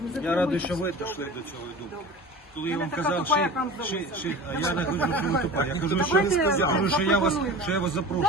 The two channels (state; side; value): normal; both; correlation 0.36